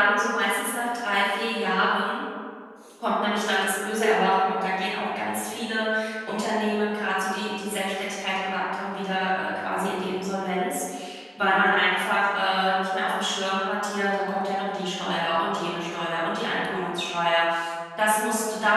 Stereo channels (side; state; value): both; identical; correlation 1.00